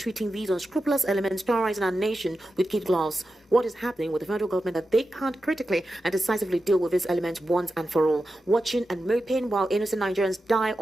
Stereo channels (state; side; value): normal; both; correlation 0.91